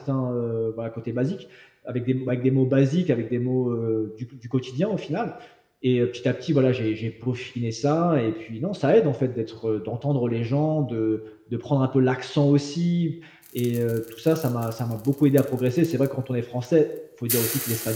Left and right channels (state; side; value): identical; both; correlation 1.00